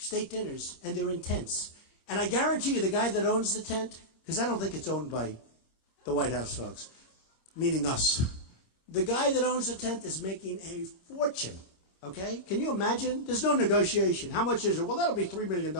dinners, and they're in tents. And I guarantee you, the guy that owns the tent, because I don't think it's owned by the White House folks, meaning us. The guy that owns the tent is making a fortune, okay? Can you imagine? There's no negotiation. How much is it? Well, that'll be $3 million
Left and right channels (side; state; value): right; late; 26 ms